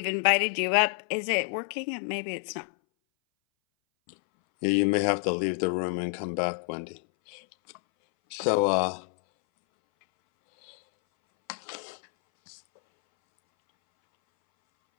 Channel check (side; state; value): right; silent; 59 dB below the other